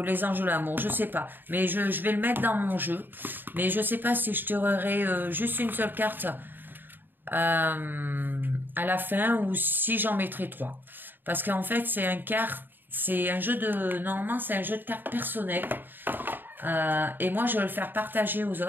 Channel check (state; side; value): late; left; 0.093 ms